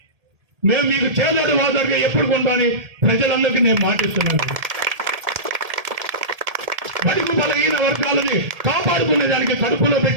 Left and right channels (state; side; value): late; left; 1.7 ms